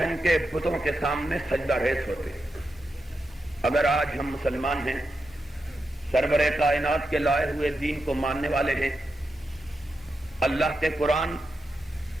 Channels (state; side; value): normal; both; correlation 0.88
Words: کے بتوں کے سامنے سجدہ ریز ہوتے۔ اگر آج ہم مسلمان ہیں، سرور کائنات کے لائے ہوئے دین کو ماننے والے ہیں، اللہ کے قرآن